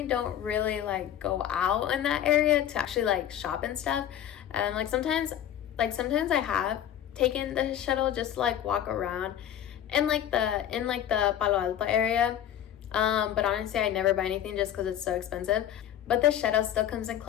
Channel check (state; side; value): quieter; right; 10.6 dB